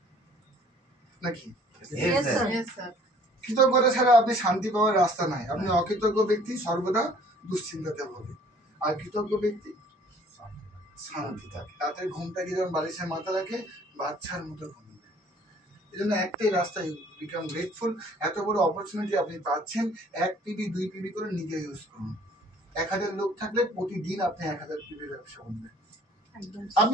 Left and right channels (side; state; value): both; normal; correlation 0.55